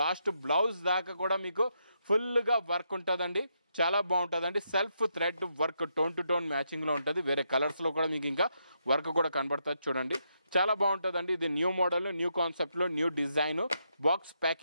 లాస్ట్ బ్లౌజ్ దాకా కూడా మీకు ఫుల్గా వర్క్ ఉంటుందండి. చాలా బాగుంటుందండి. Self thread work, tone to tone మ్యాచింగ్లో ఉంటుంది. వేరే కలర్స్లో కూడా మీకు ఇంకా వర్క్ కూడా కనబడుతుంది. చూడండి, చాలా బాగుంటుందండి. ఇది న్యూ మోడల్, న్యూ కాన్సెప్ట్లో, న్యూ డిజైన్, బాక్స్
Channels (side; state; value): both; inverted; correlation -0.80